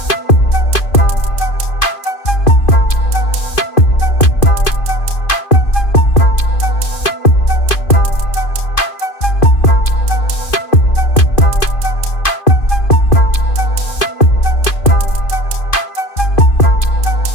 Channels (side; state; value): right; late; 2.5 ms